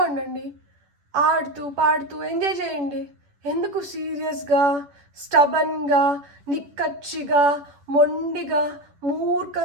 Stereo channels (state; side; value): late; left; 11 ms